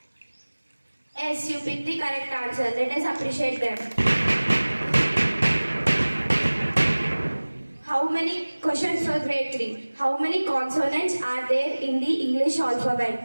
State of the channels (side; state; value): both; inverted; correlation -1.00